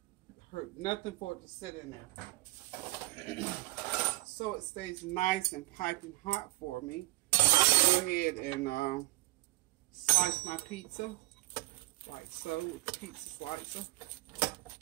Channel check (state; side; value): quieter; left; 20.3 dB